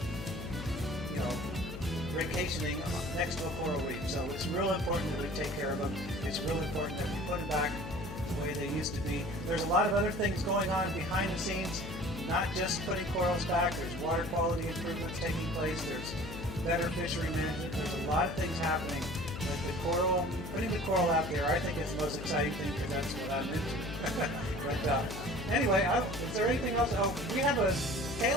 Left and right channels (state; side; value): noise; left; hum, 9 dB below the sound